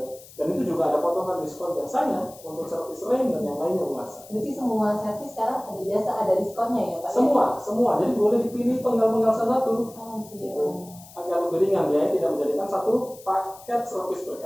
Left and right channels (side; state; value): left; noise; hiss, 20 dB below the sound